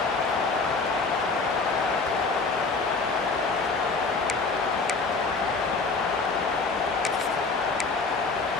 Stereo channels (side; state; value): right; quieter; 4.1 dB